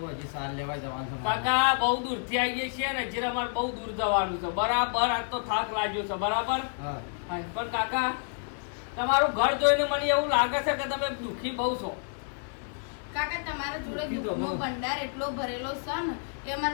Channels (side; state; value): right; silent; 58 dB below the other